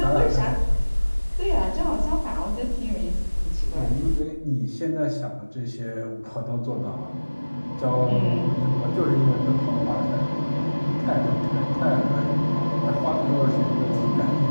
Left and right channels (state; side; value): inverted; both; correlation -1.00